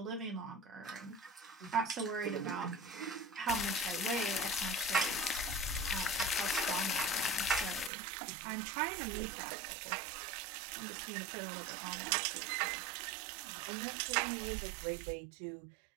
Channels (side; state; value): left; drops out; at 7.9 s